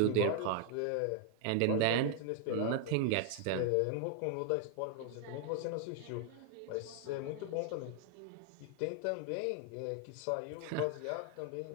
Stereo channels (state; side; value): different; both; correlation 0.00